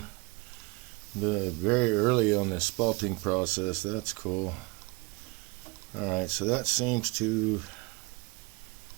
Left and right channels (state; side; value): quieter; left; 27.0 dB